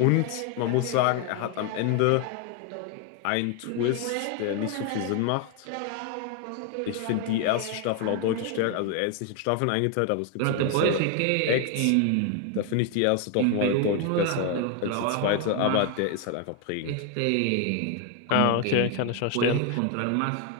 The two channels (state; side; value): different; both; correlation 0.01